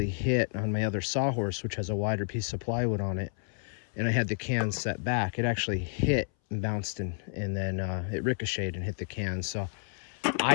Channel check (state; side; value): silent; right; 57 dB below the other